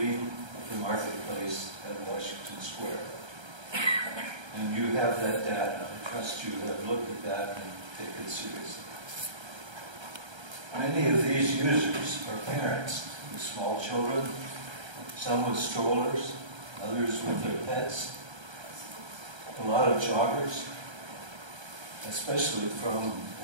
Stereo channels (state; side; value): late; left; 1.3 ms